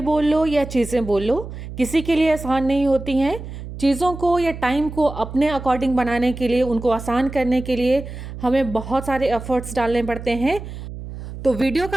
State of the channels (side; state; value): right; noise; hum, 11 dB below the sound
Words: बोल लो या चीज़ें बोल लो, किसी के लिए आसान नहीं होती हैं। चीज़ों को या टाइम को अपने अकॉर्डिंग बनाने के लिए, उनको आसान करने के लिए हमें बहुत सारे एफर्ट्स डालने पड़ते हैं। तो वीडियो